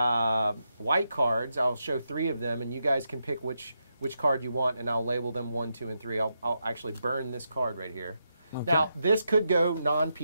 cards. I'll show 3 of them, and you guys can pick which card you want, and I'll label them 1, 2, and 3. I'll actually burn this card right here. Okay. Now, this could go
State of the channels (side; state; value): both; inverted; correlation -0.84